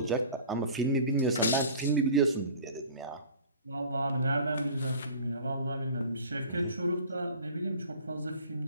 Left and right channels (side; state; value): both; inverted; correlation -0.43